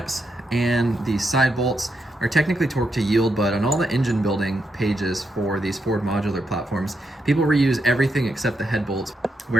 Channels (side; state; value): both; normal; correlation 0.82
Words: and the side bolts are technically torque to yield, but on all the engine building pages for these Ford modular platforms, people reuse everything except the head bolts.